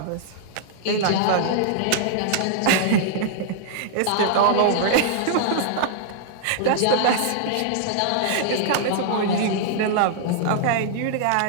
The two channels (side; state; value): both; different; correlation -0.01